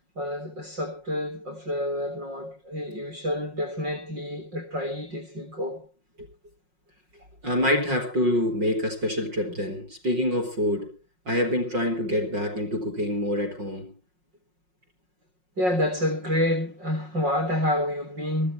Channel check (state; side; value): late; left; 5.5 ms